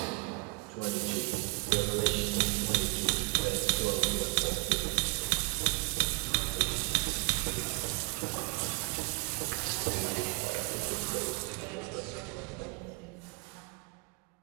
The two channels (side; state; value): left; quieter; 31.3 dB